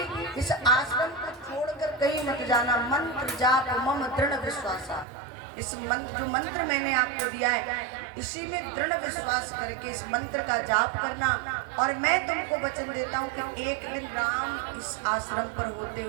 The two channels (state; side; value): drops out; left; at 5.1 s